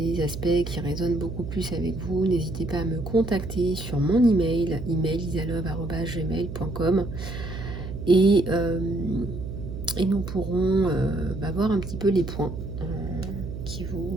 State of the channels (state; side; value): noise; right; hum, 8 dB below the sound